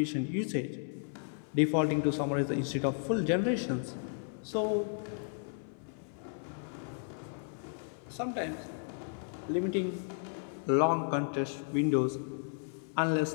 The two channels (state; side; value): silent; right; 55 dB below the other